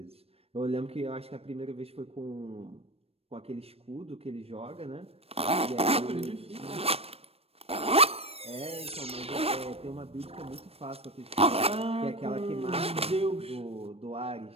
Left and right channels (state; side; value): late; left; 0.28 ms